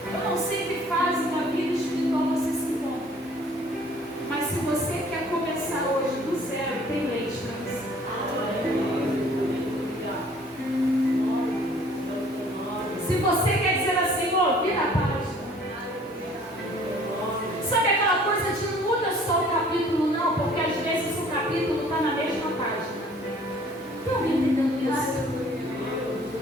Eu não sei que fase uma vida espiritual você se encontra, mas se você quer começar hoje do zero, tem leite para você. Se você quer dizer assim: ó, vira a página. Sabe aquela coisa de não muda só o capítulo, não, porque às vezes o capítulo está na mesma página. Tem alguém entendendo isso?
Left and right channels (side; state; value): both; normal; correlation 0.54